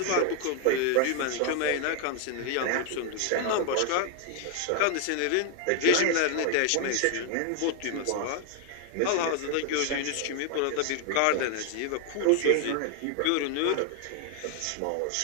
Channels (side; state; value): both; different; correlation 0.00